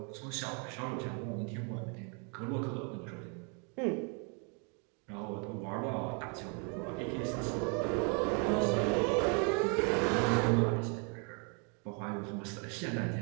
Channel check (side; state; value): left; quieter; 36.8 dB